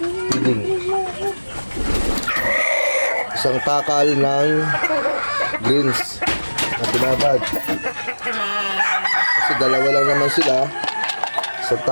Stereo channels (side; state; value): both; inverted; correlation -1.00